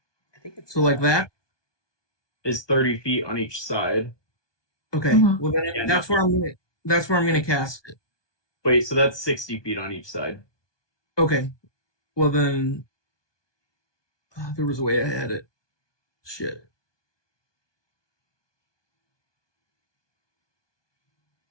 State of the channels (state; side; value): late; right; 1.2 ms